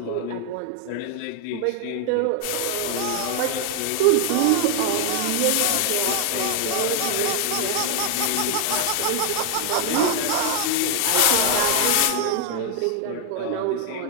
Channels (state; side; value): different; both; correlation 0.00